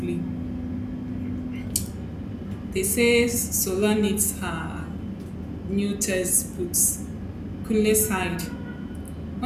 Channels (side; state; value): both; identical; correlation 1.00